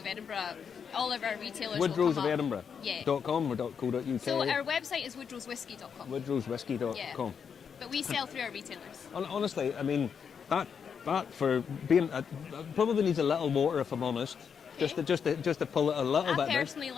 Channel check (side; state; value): right; quieter; 6.9 dB